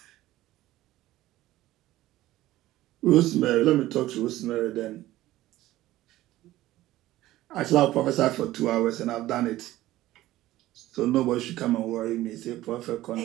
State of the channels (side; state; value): left; quieter; 15.8 dB